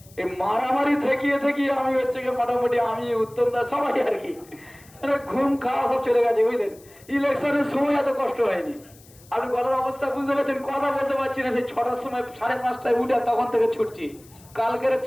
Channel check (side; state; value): left; noise; hiss, 25 dB below the sound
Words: এই মারামারি থেকিয়ে আমি হচ্ছে মোটামুটি আমি উত্তমদা সবাই আর কি ঘুম খাওয়া সব চলে গেছে, বুঝলেন। ইলেকশনের সময় এত কষ্ট হয়নি। আপনি গলার অবস্থা বুঝতে পারছেন, কথা বলতে পারছি না। সেই 6টার সময়, 5:30টায় উঠে তখন থেকে ছুটছি, কালকের